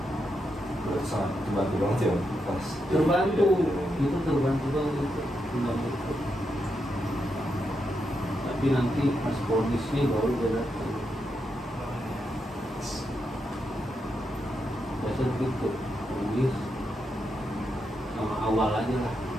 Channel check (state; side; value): normal; both; correlation 0.83